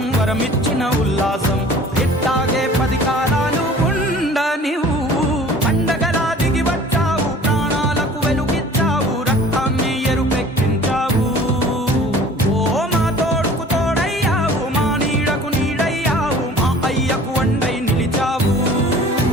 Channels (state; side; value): normal; both; correlation 0.47